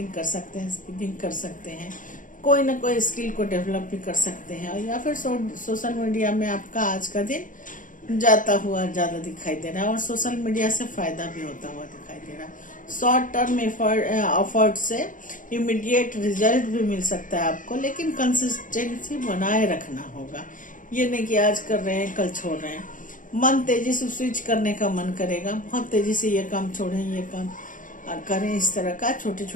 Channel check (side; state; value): right; late; 0.38 ms